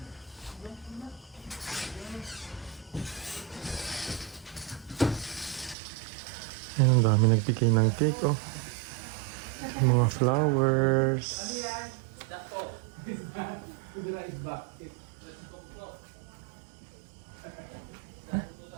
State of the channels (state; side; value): drops out; left; at 5.8 s